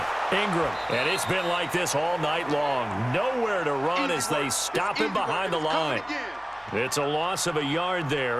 Ingram. And it's been like this all night long. Nowhere to run as they stop him behind the line. It's a loss of a yard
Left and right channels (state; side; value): noise; left; hum, 27 dB below the sound